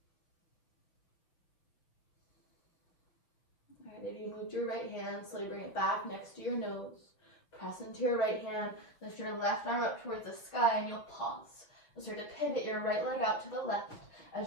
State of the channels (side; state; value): right; late; 6.4 ms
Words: All right, if you moved your right hand, slowly bring it back next to your nose. Press into your right hand. Lift your left arm up towards the sky and you'll pause. You'll start to pivot your right leg out to the left